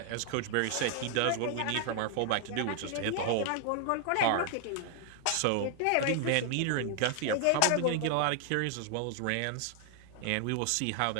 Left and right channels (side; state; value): both; different; correlation 0.00